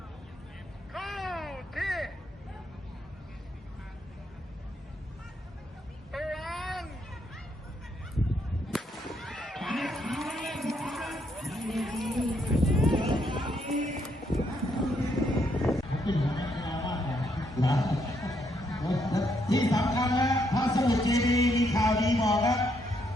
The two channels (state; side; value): normal; both; correlation 0.74